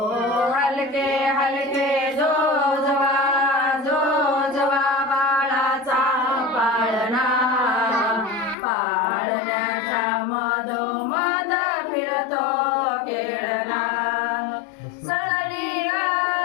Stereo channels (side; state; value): right; drops out; at 8.6 s